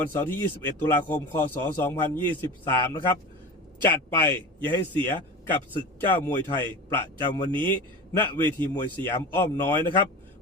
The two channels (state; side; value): normal; both; correlation 0.31